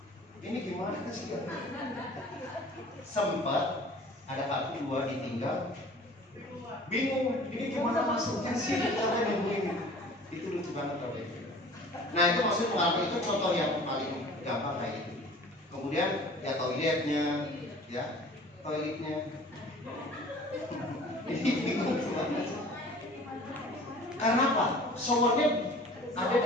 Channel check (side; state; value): both; normal; correlation 0.46